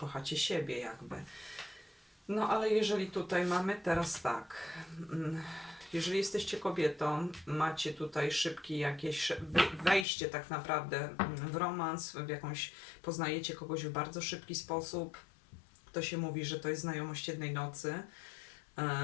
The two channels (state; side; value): drops out; right; at 10.1 s